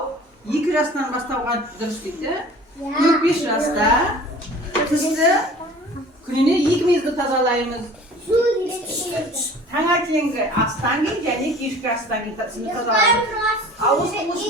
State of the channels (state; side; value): normal; both; correlation 0.45